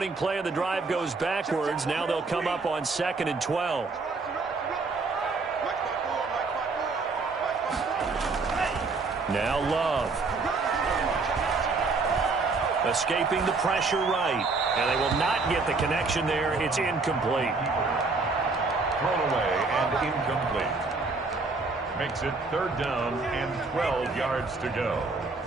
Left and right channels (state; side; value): quieter; left; 4.0 dB